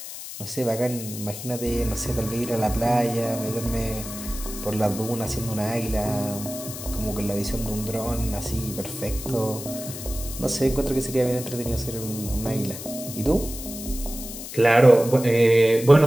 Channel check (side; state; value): left; noise; hiss, 10 dB below the sound